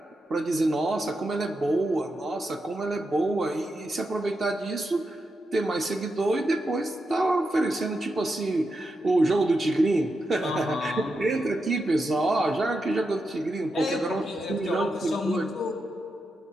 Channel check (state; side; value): normal; both; correlation 0.87